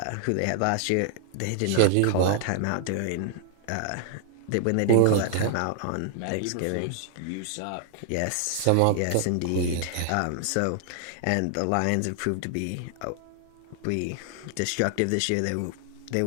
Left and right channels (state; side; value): different; both; correlation -0.01